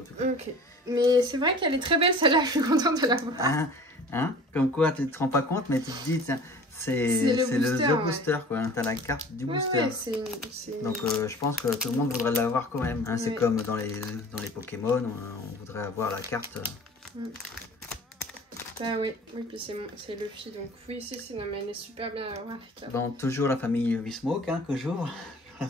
tout cas. Ok. Mais c'est vrai qu'elle est très belle celle-là. Je suis contente de la voir. Hein, comme quoi, tu te rends pas compte, mais tu te dis, tiens, c'est le booster, quoi. T'as la carte du booster. Ouais, donc, je pense que tout le monde voudrait l'avoir quand même. Hein. Ouais. C'est comme dans les Pokémon, on voudrait avoir la carte. Bah oui, puis c'est Luffy, donc oui, si, non, mais elle est super bien à avoir. Bon, toujours la famille Vismoke, hein, toujours. La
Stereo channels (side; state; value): both; normal; correlation 0.44